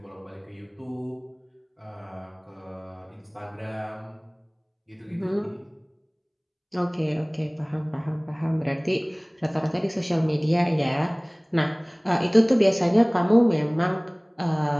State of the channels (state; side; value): identical; both; correlation 1.00